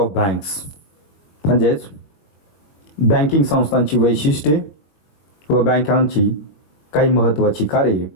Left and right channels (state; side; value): late; right; 21 ms